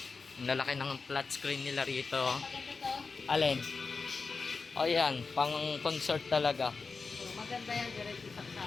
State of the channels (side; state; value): right; quieter; 4.5 dB